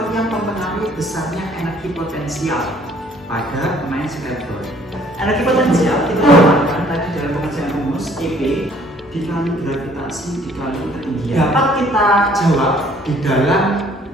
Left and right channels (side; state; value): both; normal; correlation 0.59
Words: yang mempengaruhi besarnya energi potensial pada pemain skateboard. Energi potensial kita dapatkan tadi dalam pengerjaan rumus EP dikali gravitasi dikali ketinggian. Dapat kita jawab di